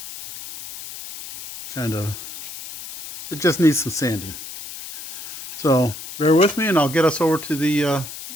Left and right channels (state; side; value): noise; left; hiss, 11 dB below the sound